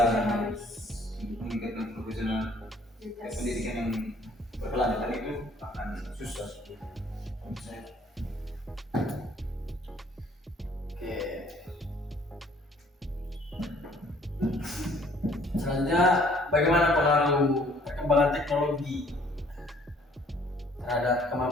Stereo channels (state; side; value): normal; both; correlation 0.59